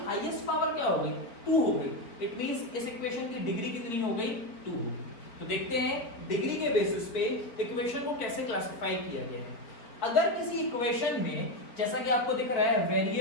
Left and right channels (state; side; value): late; right; 4.4 ms